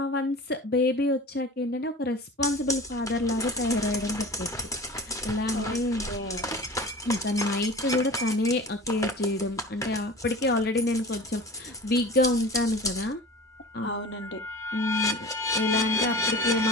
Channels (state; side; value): normal; both; correlation 0.37